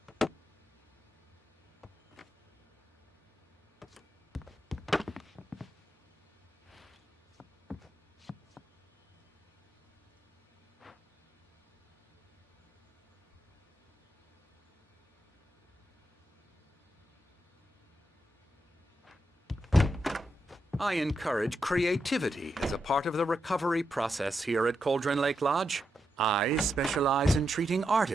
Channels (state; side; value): normal; both; correlation 0.85